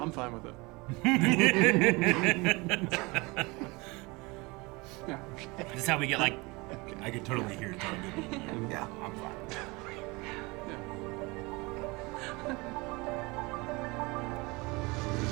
fine with it. This is how we get like. I could totally hear it talking. Yeah, I'm fine.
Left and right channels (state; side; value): quieter; left; 25.2 dB